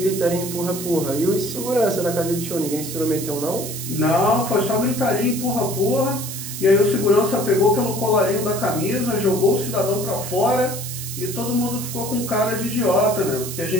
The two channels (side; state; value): right; noise; hiss, 8 dB below the sound